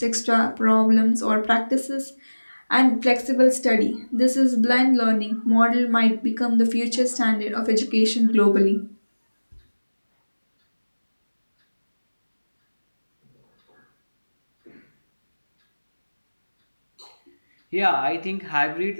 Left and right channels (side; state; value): both; inverted; correlation -1.00